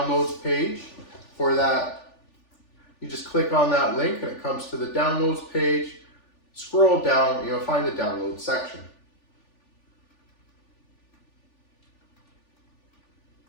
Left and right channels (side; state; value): right; late; 3.4 ms